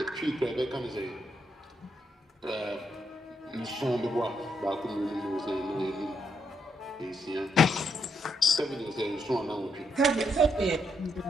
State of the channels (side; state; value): both; normal; correlation 0.78